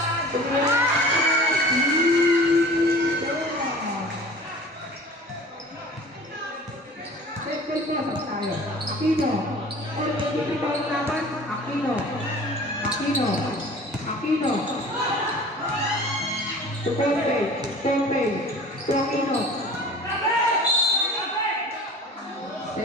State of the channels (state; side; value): normal; both; correlation 0.43